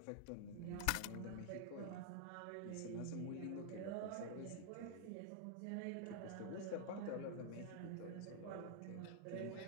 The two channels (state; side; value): different; both; correlation 0.00